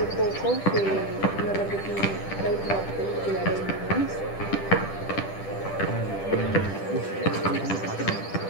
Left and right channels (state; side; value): late; right; 10 ms